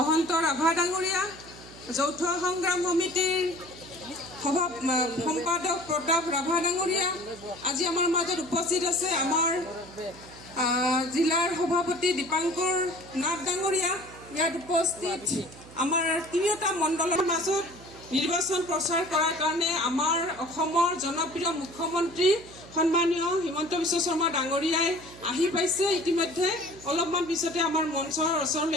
ৰাভা ডাঙৰীয়া, যৌথ সংগ্ৰাম সমিতিৰ সম্পাদক প্ৰতাপ ৰাভা ডাঙৰীয়া, আজি আমাৰ মাজত উপস্থিত আছে আমাৰ জিলাৰ সভাপতি দীপাংকৰ নাথ ডাঙৰীয়া, ইয়াত উপস্থিত আমাৰ তিনিওটা মণ্ডলৰ মাজত নিৰ্বাচন প্ৰচাৰ কৰাৰ কাৰণে আমাৰ অসমৰ জনপ্ৰিয় মুখ্যমন্ত্ৰী সন্মানীয় হিমন্ত বিশ্ব শৰ্মা ডাঙৰীয়াই আহি পাইছে। ইতিমধ্যে অলপমান পিছতে আমাৰ মঞ্চৰ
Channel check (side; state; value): right; noise; hum, 19 dB below the sound